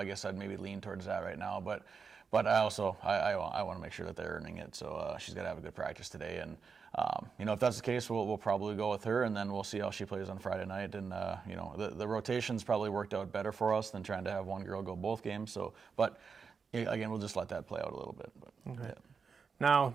guess I'd maybe lean towards that right now. But I also, I want to make sure that they're earning it, so she's got to have a good practice today. And, if that's the case, we'll probably go with her, and then we'll see how she plays on Friday night. And, the rotations probably worked out better for us than trying to have one girl go both games. So, but, again, we'll just let that play out a little bit. But, okay. Yeah. Now,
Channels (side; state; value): left; quieter; 5.6 dB